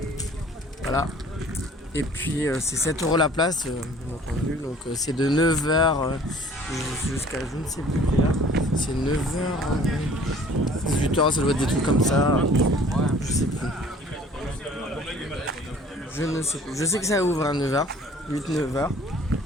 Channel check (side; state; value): both; normal; correlation 0.52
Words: Voilà. Et puis c'est 7 € la place, bien entendu. Donc c'est de 9h jusqu'à je ne sais plus quelle heure. C'est 9h, 18h, ça doit être des trucs comme ça. Je sais plus. Je ne sais plus. Je sais que ça ouvre à 9h, 8-9h.